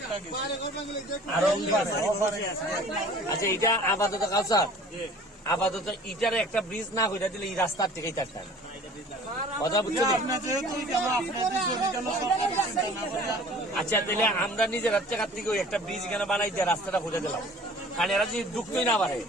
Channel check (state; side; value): normal; both; correlation 0.47